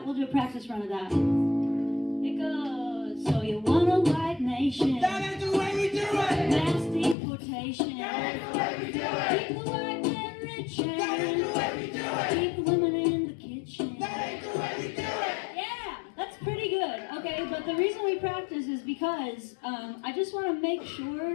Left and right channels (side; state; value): right; drops out; at 7.2 s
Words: a practice run of that. It goes, so you want a white nation. That ain't the way we do it. Mass deportation. That ain't the way we do it. Keep the white man rich and That ain't the way we do it. keep the women in the kitchen. That ain't the way we do it. Yeah, that's pretty good. Okay, but the reason we practice is because I just want to make